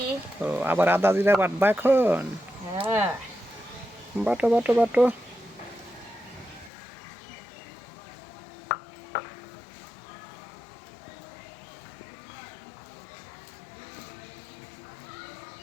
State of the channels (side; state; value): right; drops out; at 6.7 s